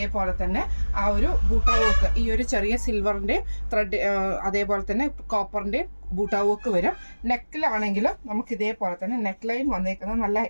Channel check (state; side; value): inverted; both; correlation -1.00